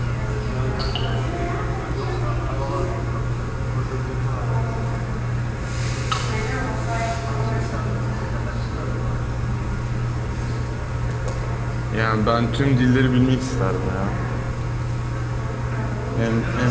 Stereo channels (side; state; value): both; identical; correlation 1.00